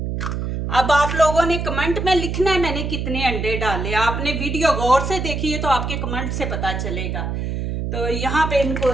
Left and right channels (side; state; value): right; noise; hum, 3 dB below the sound